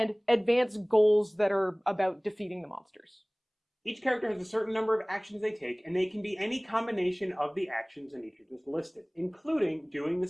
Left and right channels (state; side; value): identical; both; correlation 1.00